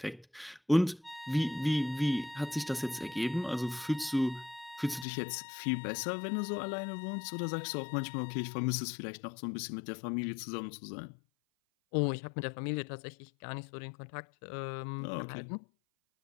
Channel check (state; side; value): drops out; right; at 5.1 s